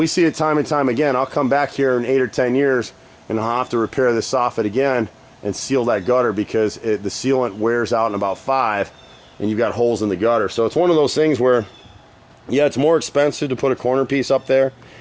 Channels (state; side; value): identical; both; correlation 1.00